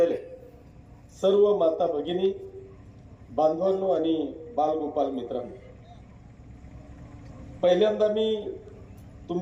सर्व माता भगिनी, बांधवांनो आणि बालगोपाल मित्रांनो, पहिल्यांदा मी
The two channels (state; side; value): identical; both; correlation 1.00